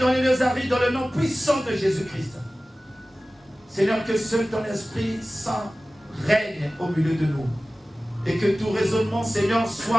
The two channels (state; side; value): normal; both; correlation 0.97